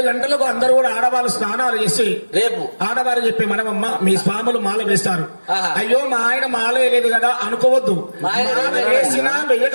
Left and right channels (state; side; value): inverted; both; correlation -1.00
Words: గంటలకు అందరూ కూడా ఆడవాళ్ళు స్నానాలు చేసి రేపు ఆడవారు చెప్పి మనమమ్మ మీ స్వాములు మాల వేస్తారు. అయ్యో మా ఆయన మాల వేయలేదు కదా అనుకోవద్దు. మాల వేసినా